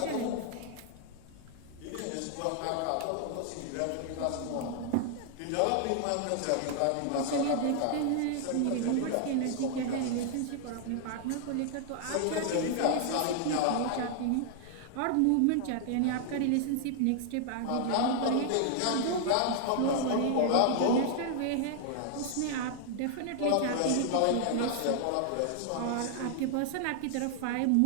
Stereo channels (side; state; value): both; different; correlation 0.00